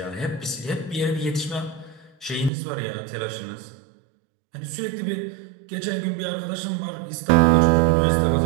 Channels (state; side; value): drops out; left; at 2.5 s